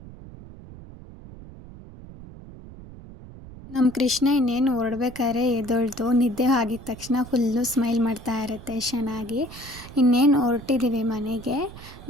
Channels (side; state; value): right; noise; rumble, 16 dB below the sound